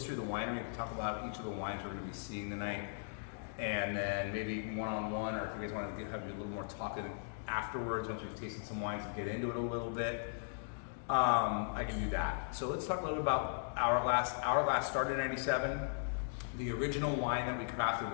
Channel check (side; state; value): right; silent; digital silence